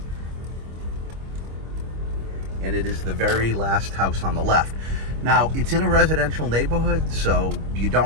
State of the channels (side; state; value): left; late; 25 ms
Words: And it is the very last house on the left. Now, it's in a residential neighborhood, so you